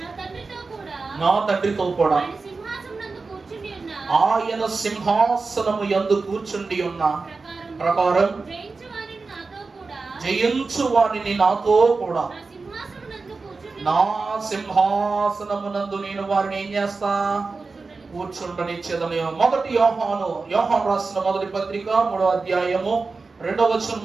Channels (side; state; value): left; quieter; 4.1 dB